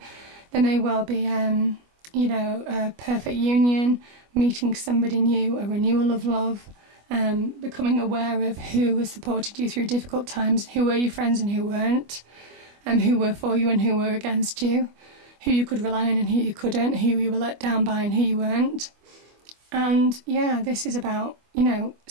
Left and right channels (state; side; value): late; left; 25 ms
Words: There may well be, you know, a perfect union, meeting somebody new, a renewal of love, becoming aware of who has supported you through difficult times, who were your friends and who weren't, who were for you and who were against you, who you could rely on and who you couldn't, who you were let down by and who you weren't. And yeah, this is about, you know,